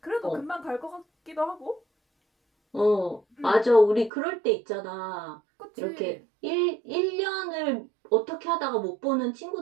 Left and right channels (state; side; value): drops out; left; at 4.1 s